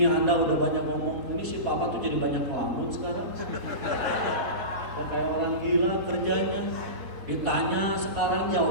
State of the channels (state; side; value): late; left; 3.7 ms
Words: Anda udah banyak ngomong, ini si papa tuh jadi banyak ngelamun sekarang. Dan kayak orang gila kerjanya. Ditanya sekarang